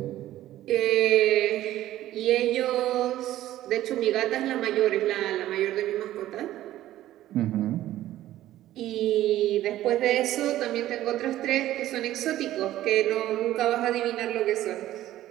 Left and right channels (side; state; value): left; quieter; 14.0 dB